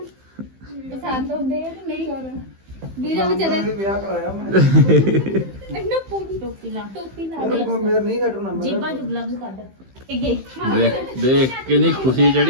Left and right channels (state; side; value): late; left; 15 ms